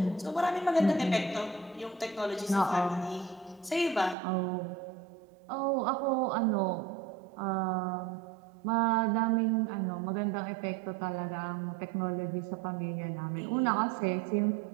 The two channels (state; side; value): drops out; left; at 4.2 s